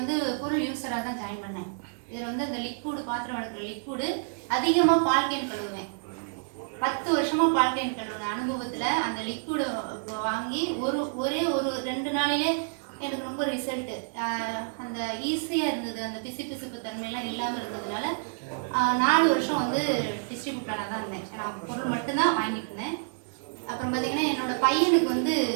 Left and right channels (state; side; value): silent; left; digital silence